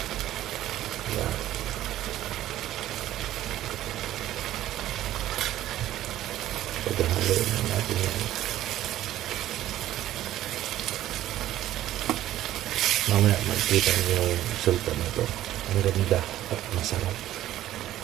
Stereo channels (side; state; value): left; quieter; 13.6 dB